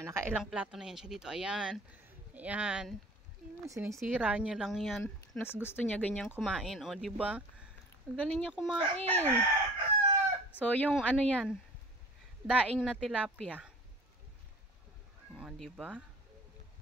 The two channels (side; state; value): both; normal; correlation 0.44